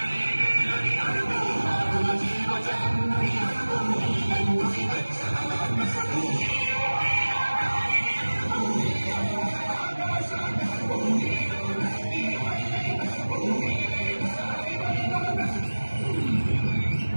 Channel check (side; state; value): both; inverted; correlation -1.00